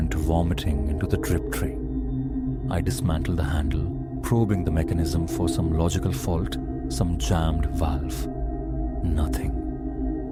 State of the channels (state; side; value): identical; both; correlation 1.00